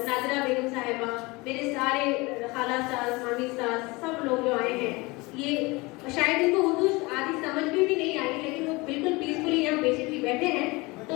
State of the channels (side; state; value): right; quieter; 24.2 dB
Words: Nadira बेगम साहिबा, मेरे सारे खाला सास, मामी सास, सब लोग जो आए हैं, ये शायद इनको उर्दू आदि समझ में भी नहीं आई, लेकिन वो बिल्कुल पीसफुली यहाँ पेशेंटली बैठे हैं। तो